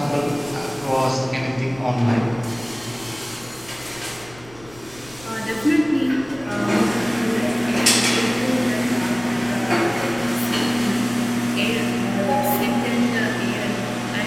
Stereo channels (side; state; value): left; noise; rumble, 21 dB below the sound